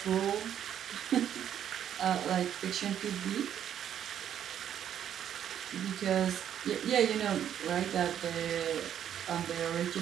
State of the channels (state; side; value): quieter; left; 9.8 dB